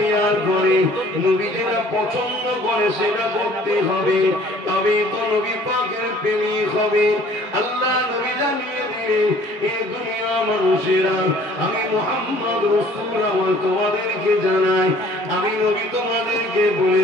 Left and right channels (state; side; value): normal; both; correlation 0.54